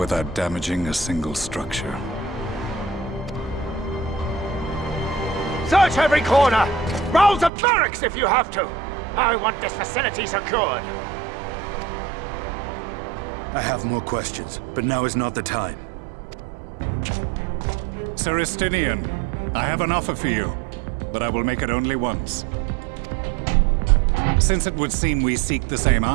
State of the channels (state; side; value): drops out; left; at 7.5 s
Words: damaging a single structure. Search every corner! Rouse the barracks if you have to! I want this facility secured! I have more questions, but now is not the time. Sir Estinian, I have an offer for you, but I will make it only once. Since it would seem we seek the same